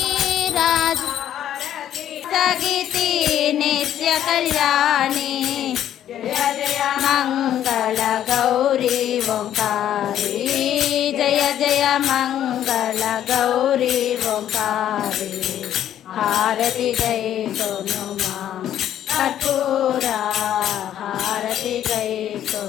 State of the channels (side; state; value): right; quieter; 11.0 dB